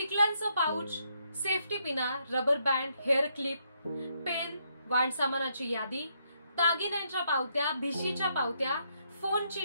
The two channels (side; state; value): both; inverted; correlation -0.75